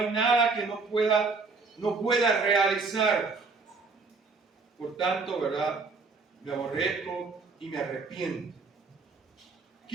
nada que no pueda realizar. Por tanto, ¿verdad?, me aborrezco y me arrepiento.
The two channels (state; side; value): quieter; left; 4.2 dB